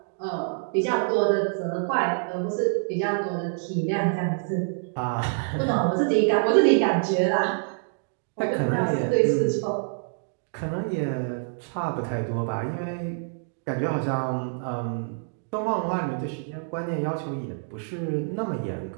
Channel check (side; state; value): left; silent; digital silence